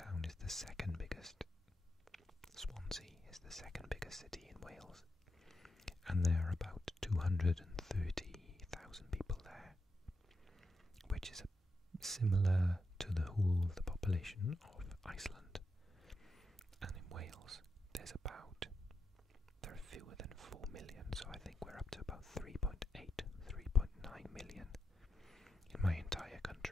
is the second biggest. Swansea is the second biggest city in Wales, and there are about 230,000 people there, which is similar to the whole of the population of Iceland. And in Wales there are fewer than 4 million, so I think we're up to about 3.8, 3.9 million in my entire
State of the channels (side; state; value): both; normal; correlation 0.86